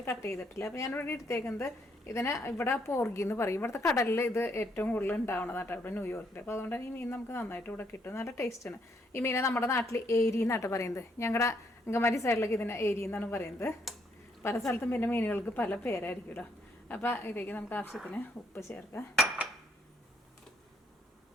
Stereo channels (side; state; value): both; normal; correlation 0.72